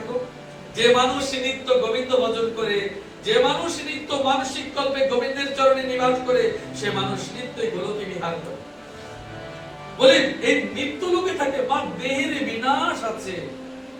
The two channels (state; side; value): identical; both; correlation 1.00